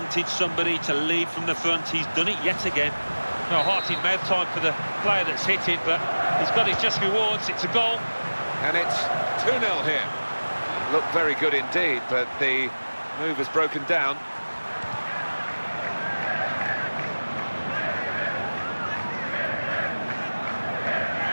somebody to lead from the front, he's done it yet again. No heart in mouth time for the player that's hit it, but he's got his just rewards. It's a goal. And it's 2-0 here. Looked very good indeed, but the move has broken down.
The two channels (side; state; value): both; inverted; correlation -1.00